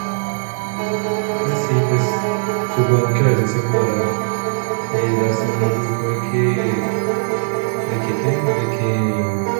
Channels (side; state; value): left; silent; digital silence